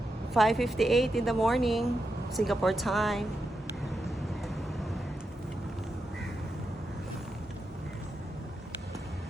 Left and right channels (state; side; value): normal; both; correlation 0.86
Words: 5:58 in the morning, Singapore time.